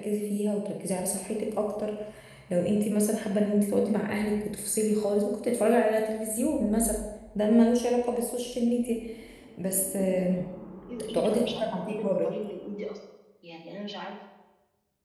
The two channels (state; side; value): identical; both; correlation 1.00